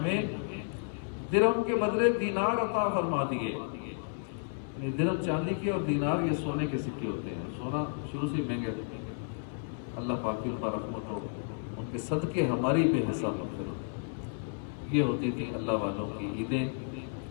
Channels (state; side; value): silent; right; 56 dB below the other